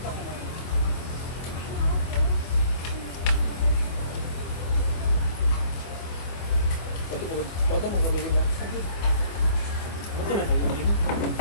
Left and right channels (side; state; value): right; late; 24 ms